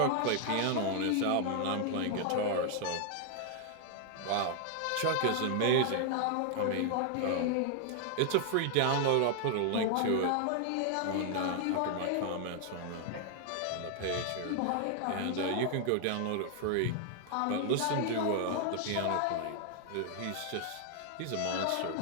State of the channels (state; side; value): different; both; correlation 0.00